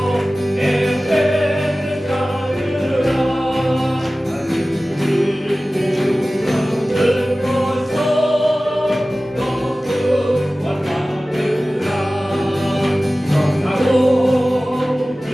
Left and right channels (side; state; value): both; normal; correlation 0.97